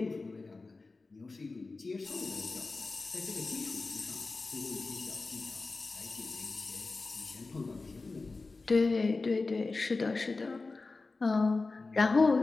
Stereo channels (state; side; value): quieter; right; 3.7 dB